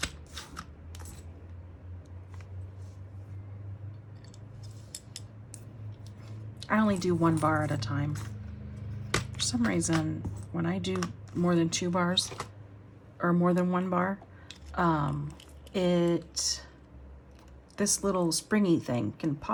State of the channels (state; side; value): identical; both; correlation 1.00